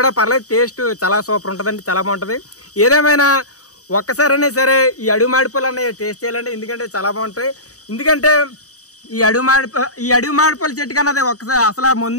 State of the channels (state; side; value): late; right; 0.66 ms